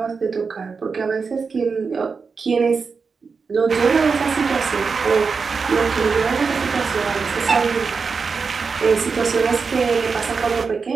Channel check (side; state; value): left; quieter; 5.1 dB